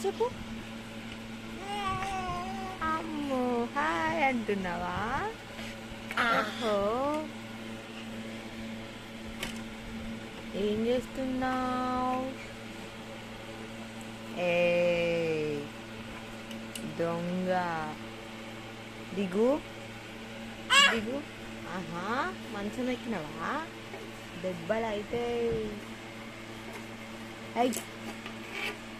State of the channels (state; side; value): identical; both; correlation 1.00